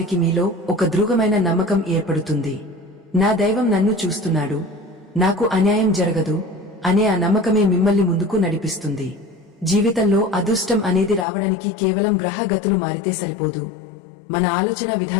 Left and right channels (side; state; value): right; drops out; at 11.2 s